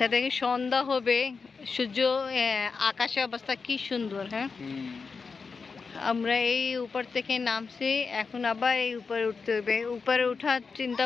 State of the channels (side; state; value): right; quieter; 5.0 dB